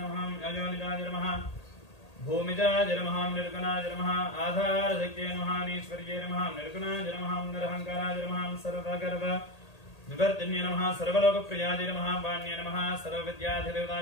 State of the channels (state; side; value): late; right; 1.8 ms